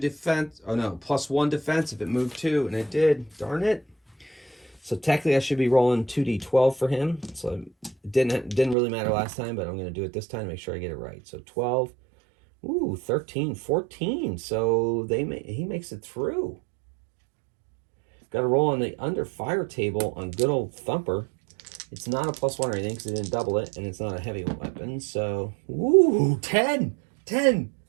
Oh no, plus 1 defense if it moved 2, and it did. Darn it. So technically I should be rolling 2d12 for him. So it didn't really matter last time, but I'm going to do it this time to make sure I get it right. So 12, 13, 14. So he makes it through. Got to roll on the under fire table on good old Thumper. It's not a plus 1 or anything because it didn't double it, and it's not a heavy weapon. So, 10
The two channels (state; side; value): drops out; left; at 8.8 s